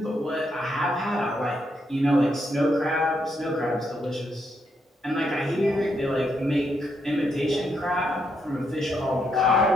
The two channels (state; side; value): normal; both; correlation 0.78